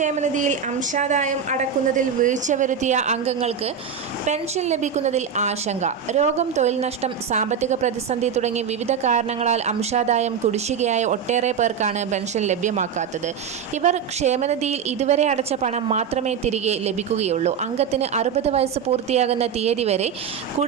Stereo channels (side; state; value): left; quieter; 7.2 dB